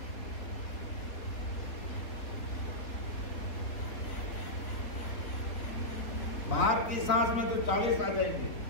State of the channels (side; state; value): right; late; 3.6 ms